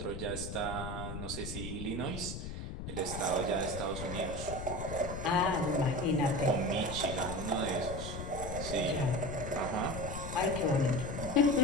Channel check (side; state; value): left; noise; rumble, 7 dB below the sound